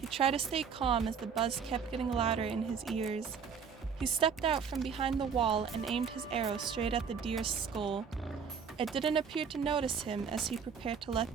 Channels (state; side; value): quieter; left; 6.4 dB